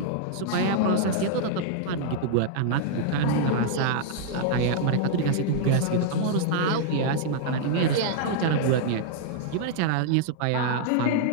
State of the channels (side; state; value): both; different; correlation -0.01